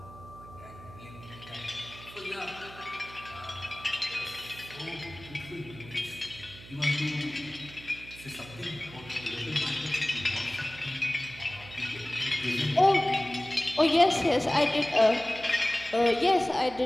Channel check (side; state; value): right; noise; hum, 18 dB below the sound